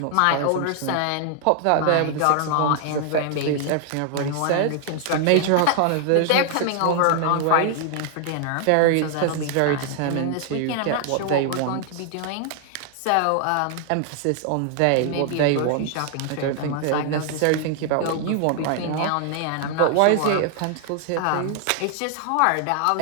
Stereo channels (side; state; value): both; different; correlation 0.00